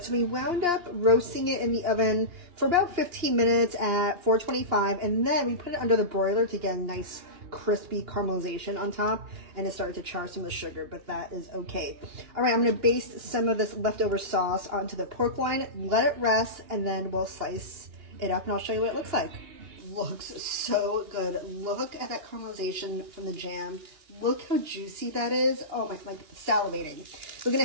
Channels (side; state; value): left; late; 2.8 ms